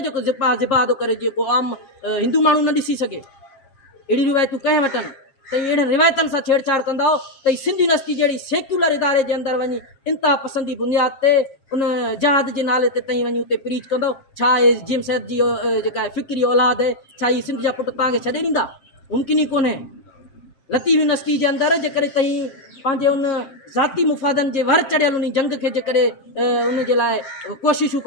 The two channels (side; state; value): right; late; 7.2 ms